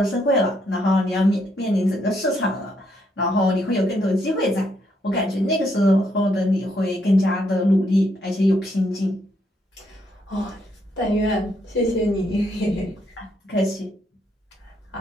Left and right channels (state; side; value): normal; both; correlation 0.74